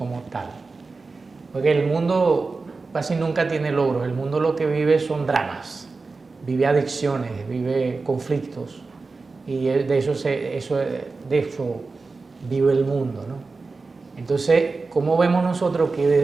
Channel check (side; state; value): left; quieter; 4.0 dB